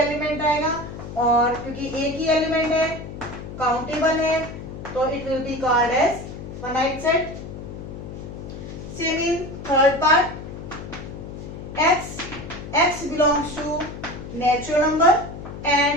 आएगा, और क्योंकि एक ही एलिमेंट है, काउंटेबल है, तो it will be called as finite set. Same in third part, x belongs to natural number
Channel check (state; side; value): noise; left; hum, 10 dB below the sound